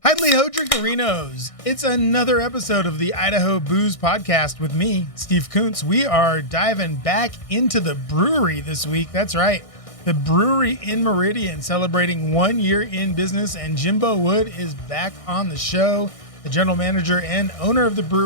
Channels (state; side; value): late; right; 1.6 ms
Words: Hidely Ho Drinkerinos. It's another episode of the Idaho Booze Podcast with me, Steve Kuntz. We are diving back into the brewery this week. That's right. The Bruery in Meridian celebrating 1 year in business, and Jimbo Wood is back on the show, the general manager and owner of the